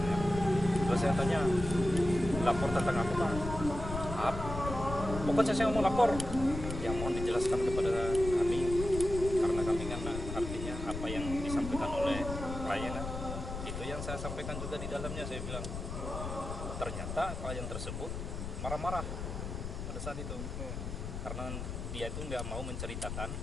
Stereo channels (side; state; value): left; noise; rumble, 6 dB below the sound